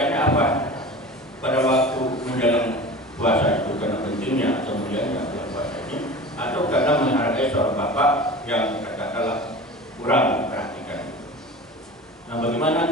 apa? Pada waktu menjelang puasa itu karena pentingnya atau mulianya puasa ini, atau karena menghargai seorang bapak yang katakanlah kurang perhatikan. Nah, bagaimana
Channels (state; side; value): normal; both; correlation 0.35